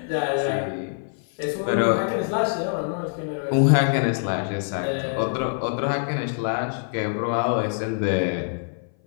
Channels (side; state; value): right; silent; 58 dB below the other